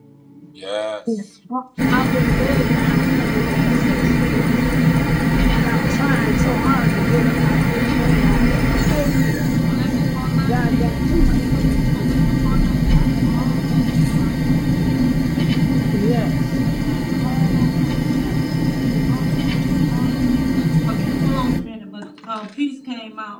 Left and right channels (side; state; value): both; identical; correlation 1.00